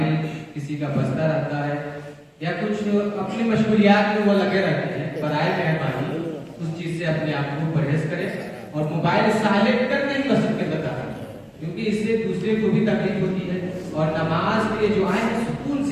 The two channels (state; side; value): identical; both; correlation 1.00